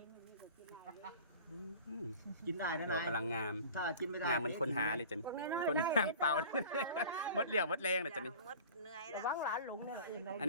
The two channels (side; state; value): both; inverted; correlation -0.41